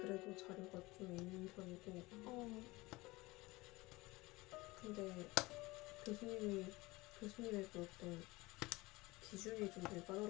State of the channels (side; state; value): right; quieter; 21.7 dB